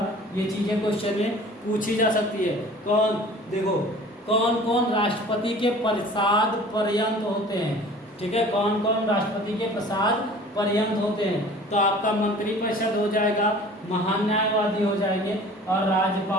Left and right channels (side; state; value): both; normal; correlation 0.46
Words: ये चीजें क्वेश्चन में पूछी जा सकती है। देखो कौन कौन राष्ट्रपति के प्रसाद पर्यंत होते हैं। ठीक है, कौन कौन राष्ट्रपति के प्रसाद पर्यंत होते हैं, तो आपका मंत्री परिषद हो जाएगा, महान न्यायवादी हो जाएंगे और